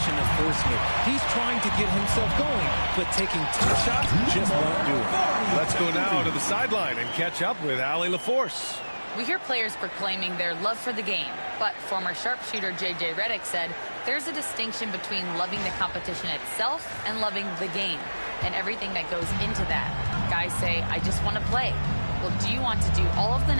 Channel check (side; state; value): both; inverted; correlation -1.00